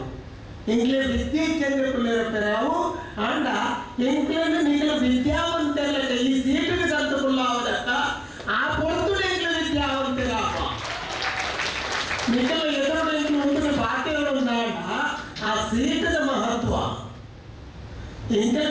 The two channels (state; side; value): identical; both; correlation 1.00